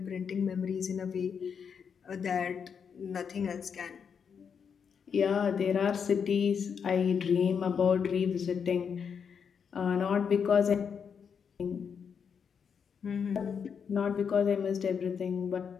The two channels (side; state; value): right; quieter; 6.8 dB